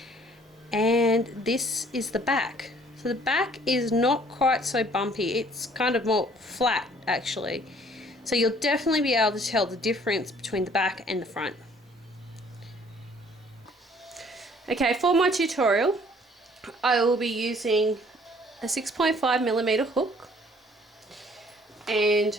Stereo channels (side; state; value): both; normal; correlation 0.58